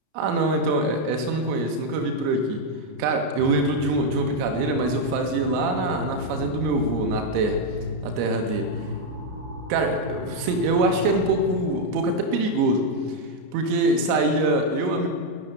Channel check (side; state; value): left; late; 33 ms